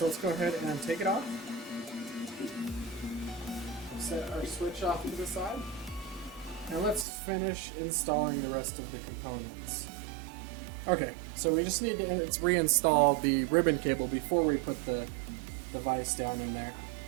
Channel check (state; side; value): drops out; left; at 7.1 s